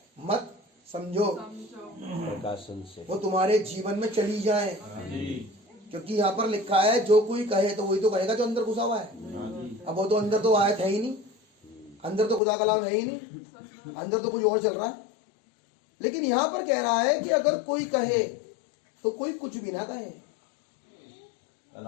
मत, समझो, प्रकाशन से। वो तुम्हारे जीवन में चली जाए। जी क्योंकि यहाँ पर लिखा है जो कोई कहे तो वही तो कहेगा जो अंदर घुसा हुआ है। अब वो तो अंदर तो आयत है ही नहीं, अंदर तो खुदा कलाम है ही नहीं, अंदर तो कुछ और चल रहा है। लेकिन यहाँ पर कह रहा है कि अगर कोई कहे तो कोई कुछ भी ना कहे,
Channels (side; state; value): right; drops out; at 12.4 s